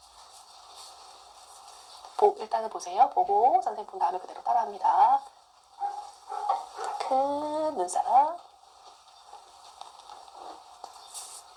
일단은 보세요. 보고 선생님 본 다음에 그대로 따라합니다. 자, 큰 눈사람.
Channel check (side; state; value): both; identical; correlation 1.00